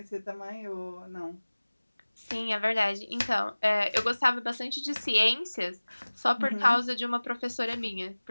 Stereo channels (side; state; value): both; inverted; correlation -1.00